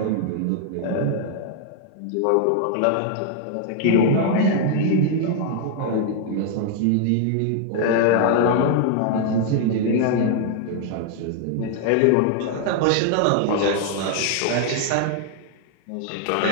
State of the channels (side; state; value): both; different; correlation 0.00